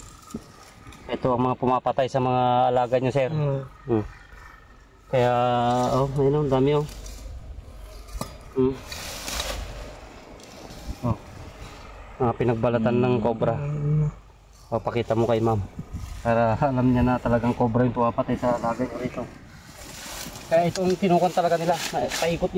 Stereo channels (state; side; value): identical; both; correlation 1.00